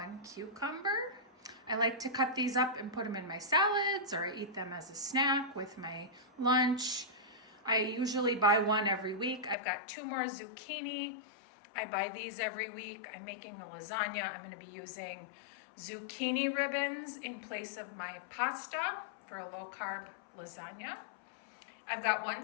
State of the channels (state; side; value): drops out; right; at 9.6 s